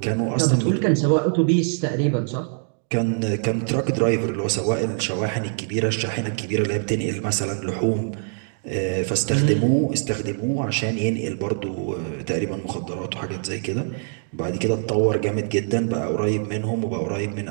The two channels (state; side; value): silent; left; 63 dB below the other